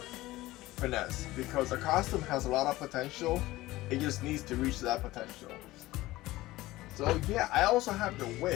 finesse because the costume has a lot of potential. It just needs to reach that potential. So yeah, I also have the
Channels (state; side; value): quieter; right; 17.8 dB